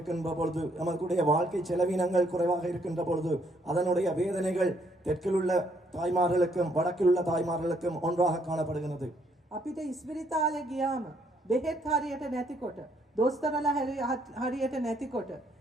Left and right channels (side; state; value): both; normal; correlation 0.70